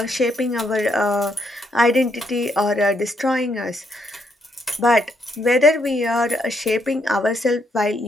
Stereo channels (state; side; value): normal; both; correlation 0.75